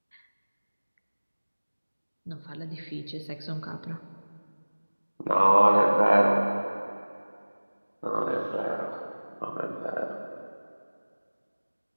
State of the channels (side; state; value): both; inverted; correlation -1.00